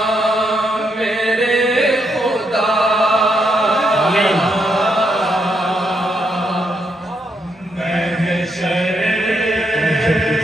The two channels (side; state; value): both; normal; correlation 0.78